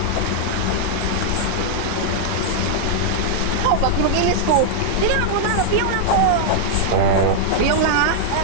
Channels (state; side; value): different; both; correlation -0.01